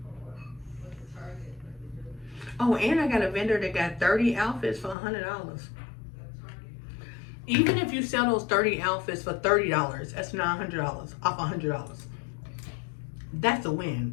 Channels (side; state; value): right; drops out; at 5.0 s